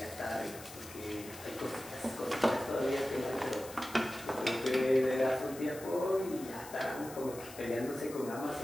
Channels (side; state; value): left; noise; hiss, 15 dB below the sound